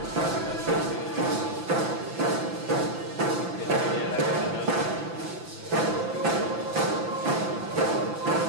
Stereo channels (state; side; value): late; left; 5.9 ms